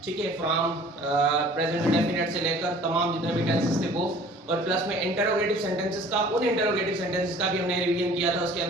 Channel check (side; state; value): both; normal; correlation 0.50